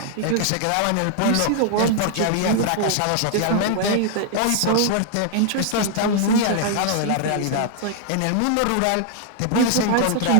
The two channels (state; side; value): different; both; correlation 0.00